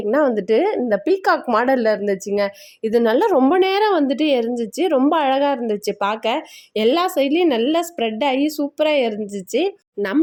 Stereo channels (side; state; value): both; identical; correlation 1.00